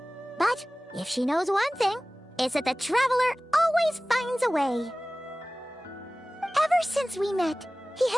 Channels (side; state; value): both; normal; correlation 0.98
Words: But if she knows one thing, it's that the Traveler always finds a way. Ever since we met, he